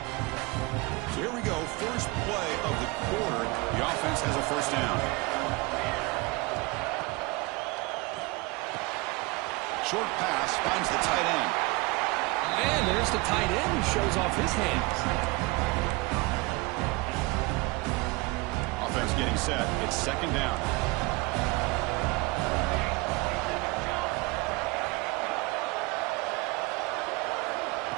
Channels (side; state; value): left; quieter; 24.6 dB